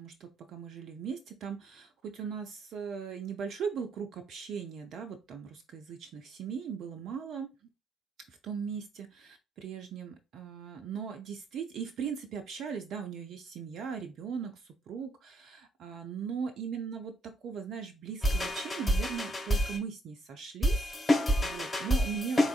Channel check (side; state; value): both; normal; correlation 0.73